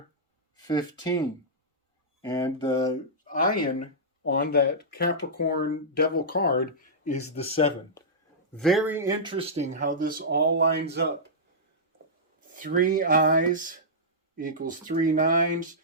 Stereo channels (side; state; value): both; normal; correlation -0.13